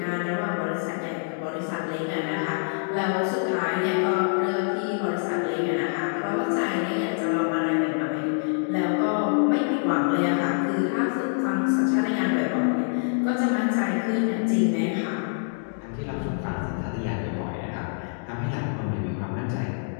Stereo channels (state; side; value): silent; right; digital silence